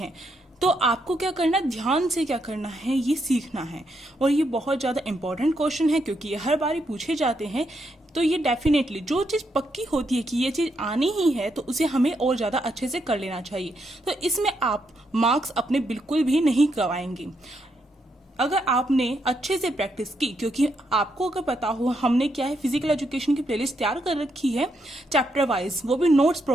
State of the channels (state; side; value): normal; both; correlation 0.79